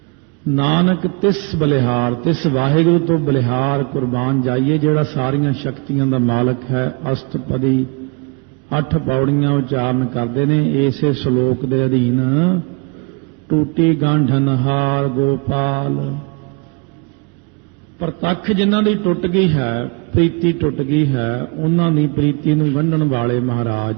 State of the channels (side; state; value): left; quieter; 32.1 dB